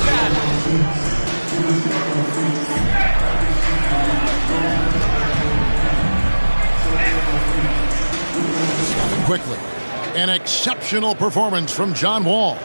half. Quickly. An exceptional performance from John Wall.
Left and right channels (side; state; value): both; inverted; correlation -1.00